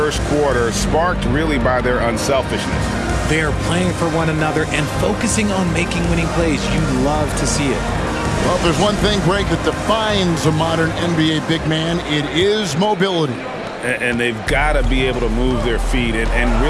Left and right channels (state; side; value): identical; both; correlation 1.00